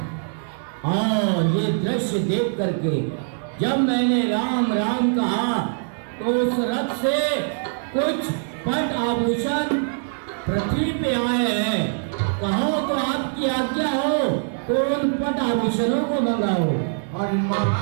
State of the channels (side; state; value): left; silent; 63 dB below the other